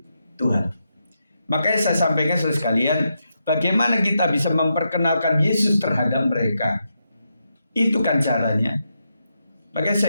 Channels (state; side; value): inverted; both; correlation -0.84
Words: Tuhan. Makanya saya sampaikan saudara sekalian, bagaimana kita bisa memperkenalkan Yesus terhadap mereka. Itu kan caranya. Makanya